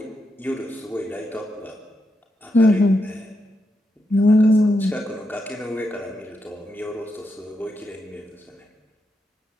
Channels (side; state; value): both; normal; correlation 0.84